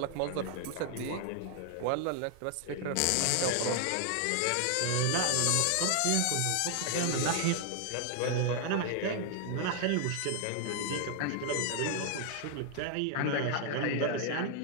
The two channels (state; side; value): different; both; correlation 0.00